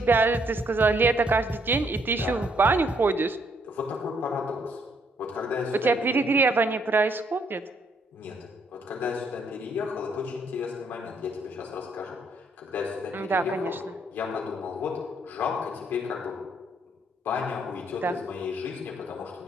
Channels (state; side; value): normal; both; correlation 0.70